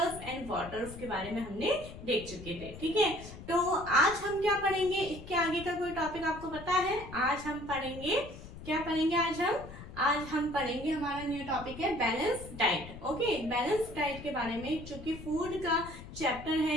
एंड वाटर्स के बारे में हमने देख चुके थे। ठीक है, तो आज हम क्या पढ़ेंगे, इसके आगे का कोई टॉपिक आपको पता है? आज हम पढ़ेंगे, क्या पढ़ेंगे आज हम पढ़ेंगे, हमारा न्यू टॉपिक है balance diet. Okay, balance diet के बारे में, चूंकि फूड का चैप्टर है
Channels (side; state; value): left; noise; rumble, 13 dB below the sound